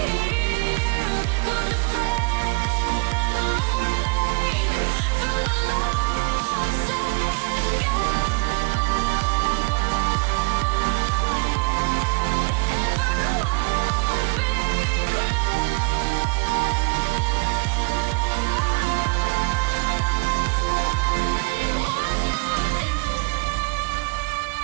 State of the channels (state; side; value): quieter; left; 30.9 dB